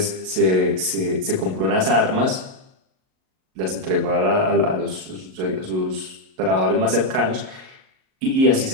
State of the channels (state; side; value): late; left; 38 ms